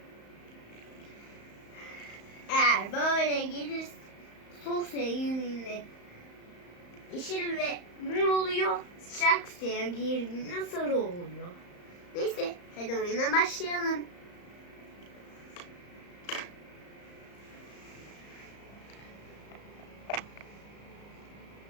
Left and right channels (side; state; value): right; late; 35 ms